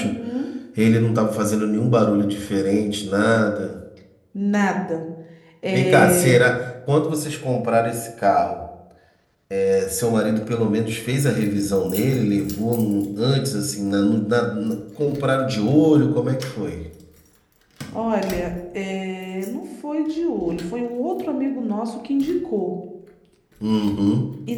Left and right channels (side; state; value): both; identical; correlation 1.00